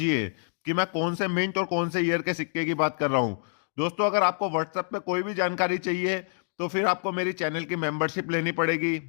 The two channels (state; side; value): silent; right; digital silence